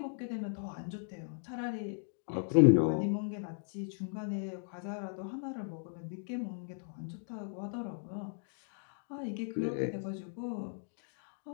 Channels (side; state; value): right; silent; digital silence